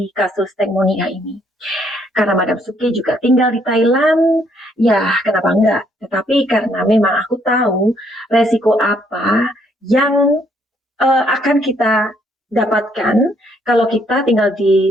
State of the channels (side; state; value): both; normal; correlation 0.69